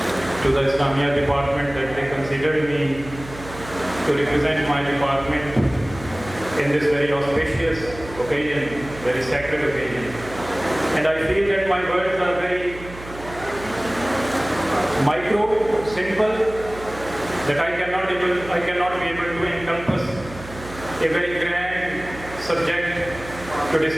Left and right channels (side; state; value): right; noise; hum, 15 dB below the sound